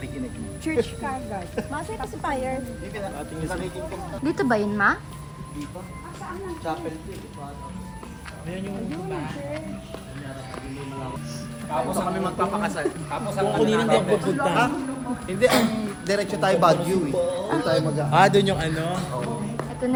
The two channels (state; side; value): identical; both; correlation 1.00